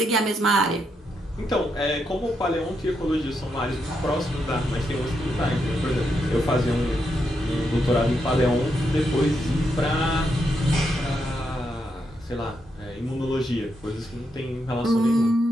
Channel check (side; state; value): both; normal; correlation 0.81